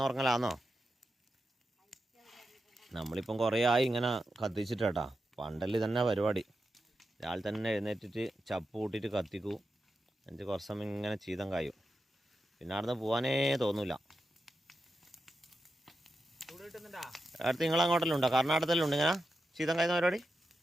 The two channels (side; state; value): both; normal; correlation 0.88